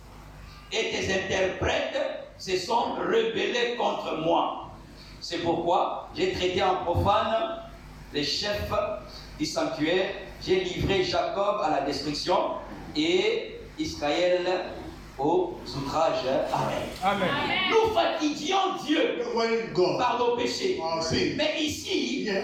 et tes interprètes se sont rebellés contre moi. C'est pourquoi j'ai traité en profane les chefs du sanctuaire, j'ai livré Jacob à la destruction et Israël aux outrages. Amen. Amen. Nous fatiguions Dieu par nos péchés. Mais ici,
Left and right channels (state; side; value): identical; both; correlation 1.00